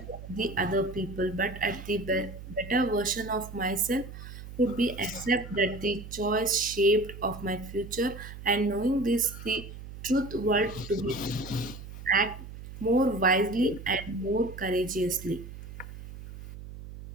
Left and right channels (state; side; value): noise; right; hum, 13 dB below the sound